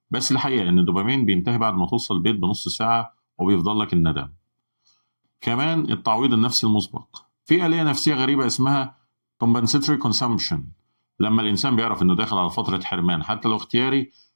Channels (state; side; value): inverted; both; correlation -1.00